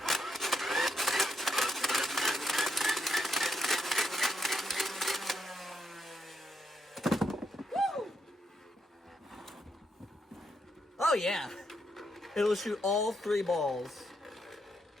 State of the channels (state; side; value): normal; both; correlation 0.80